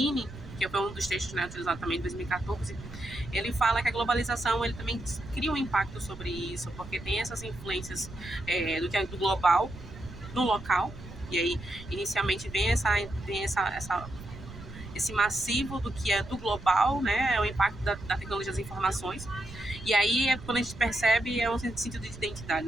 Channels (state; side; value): noise; right; rumble, 14 dB below the sound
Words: que foi um dos textos, né, utilizado também em 2014, ele fala que a globalização ele também cria um impacto sobre isso, porque tem essas influências do que é do global no local, e aí inicialmente vem esse massivo do que é do global, né, o impacto da tecnologia das informações. E aí, quando a gente percebe, é um sentido de identidade,